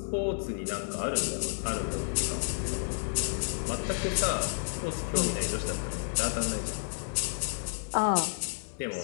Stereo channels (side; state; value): right; silent; 57 dB below the other